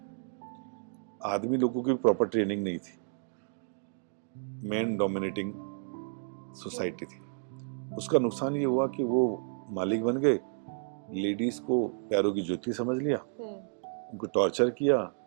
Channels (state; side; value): silent; left; digital silence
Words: आदमी लोगों की प्रॉपर ट्रेनिंग नहीं थी, मैन डोमिनेटिंग सोसाइटी थी। उसका नुकसान ये हुआ कि वो मालिक बन गए, लेडीज को पैरों की जूती समझ लिया, उनको टॉर्चर किया।